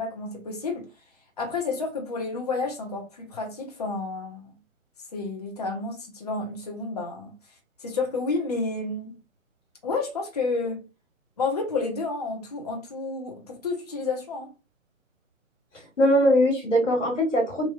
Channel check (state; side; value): normal; both; correlation 0.48